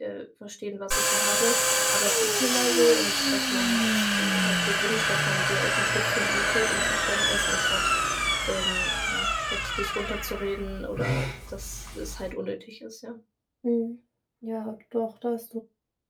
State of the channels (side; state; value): both; identical; correlation 1.00